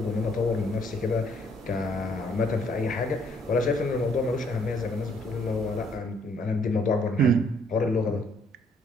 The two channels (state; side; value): normal; both; correlation 0.66